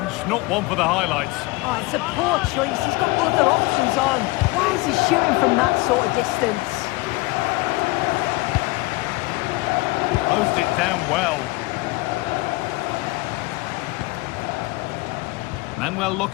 not one for the highlights. Oh, it's a poor choice. He's got other options on. Why is he shooting from that sort of distance? Closed it down well. Manuel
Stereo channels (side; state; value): right; quieter; 22.3 dB